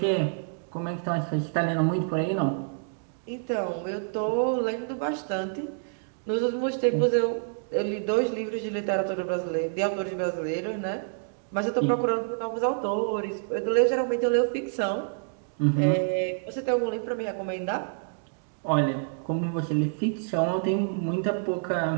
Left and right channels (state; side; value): silent; left; digital silence